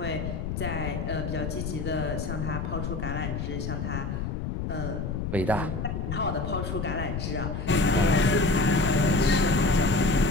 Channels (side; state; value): left; noise; rumble, 3 dB below the sound